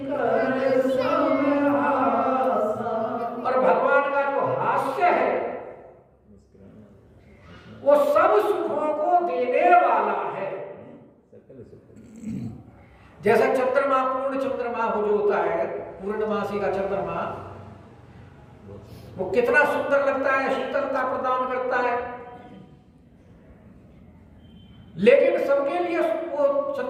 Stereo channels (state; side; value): identical; both; correlation 1.00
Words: समहासा, और भगवान का जो हास्य है वो सब सुखों को देने वाला है। जैसा चंद्रमा, पूर्ण चंद्रमा हो जो होता है, पूर्णमासी का चंद्रमा, वो कितना सुंदर लगता है, शीतलता प्रदान करता है। लेकिन सबके लिए वो